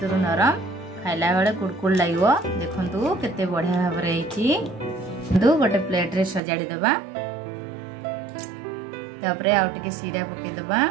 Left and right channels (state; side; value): drops out; left; at 6.4 s